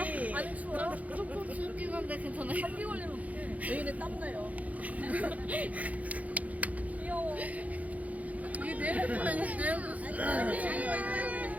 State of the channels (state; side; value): late; left; 0.072 ms